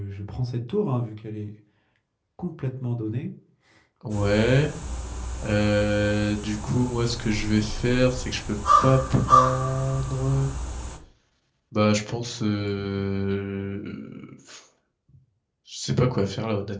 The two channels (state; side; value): identical; both; correlation 1.00